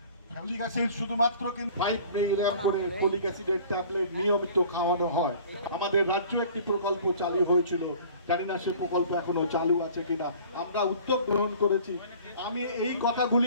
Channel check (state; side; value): inverted; both; correlation -0.47